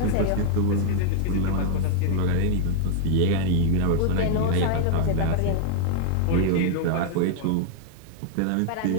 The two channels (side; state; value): both; different; correlation 0.00